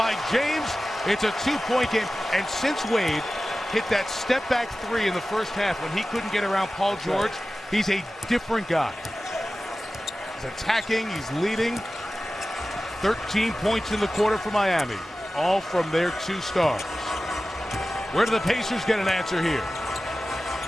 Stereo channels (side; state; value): both; normal; correlation 0.95